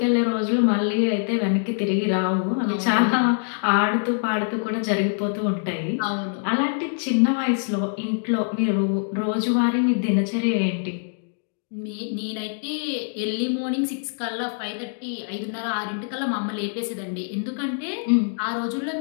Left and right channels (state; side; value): silent; right; digital silence